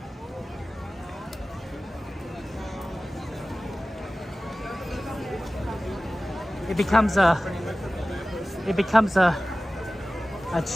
It becomes a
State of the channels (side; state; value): both; normal; correlation 0.96